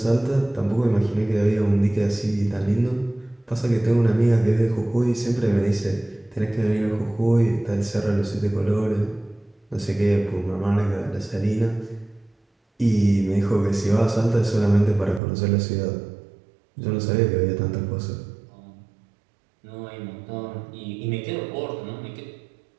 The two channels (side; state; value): left; drops out; at 15.2 s